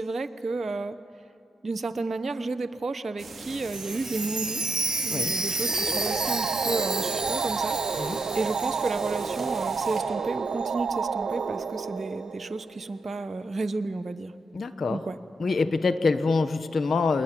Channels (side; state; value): both; normal; correlation 0.81